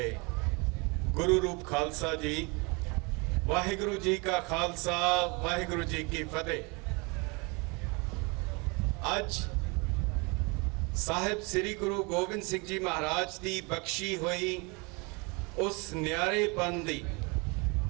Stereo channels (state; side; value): quieter; left; 29.2 dB